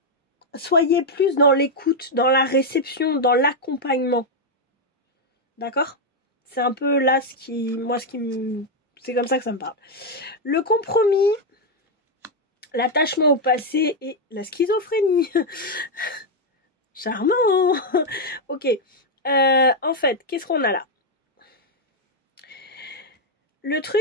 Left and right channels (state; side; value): normal; both; correlation 0.01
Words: soyez plus dans l'écoute, dans la réception, dans l'accompagnement. D'accord? C'est un peu là c'est comme ça que ça me parle. Le compromis, l'attachement au passé et la schizophrénie. Charmant. Ok. En fait, qu'est-ce qu'on a là? Le